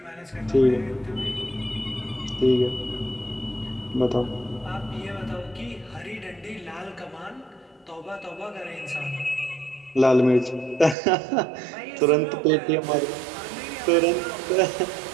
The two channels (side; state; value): left; drops out; at 11.0 s